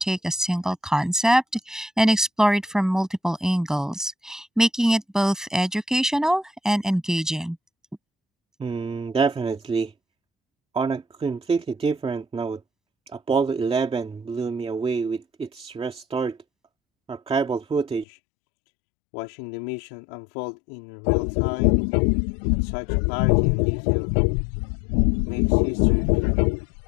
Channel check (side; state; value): right; drops out; at 18.1 s